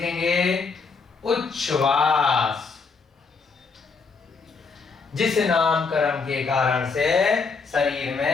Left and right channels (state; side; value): quieter; right; 4.8 dB